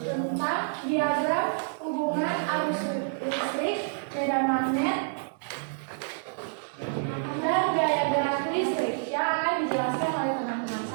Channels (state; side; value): silent; left; digital silence